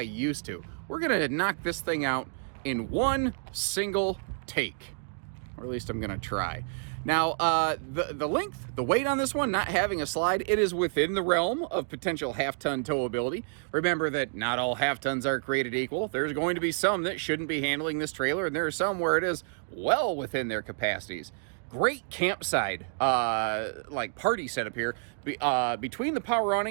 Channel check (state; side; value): silent; left; digital silence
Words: used to. We're gonna knock this thing out in one single take, or at least I'm gonna try. Now, the length, the weight on this one, not having a slide, it is within the realm of potential half-ton towability. Remember that not all half-tons are created equal. There's going to be some that shouldn't be handling this trailer, and there are some where it is well within their capacities. Great campsite, like party setup here, between the power